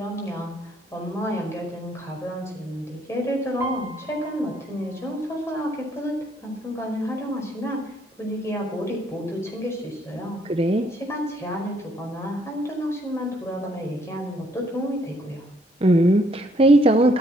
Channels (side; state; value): both; normal; correlation 0.68